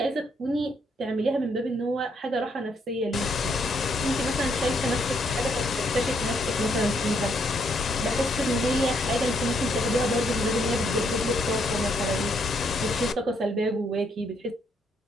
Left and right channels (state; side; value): normal; both; correlation 0.73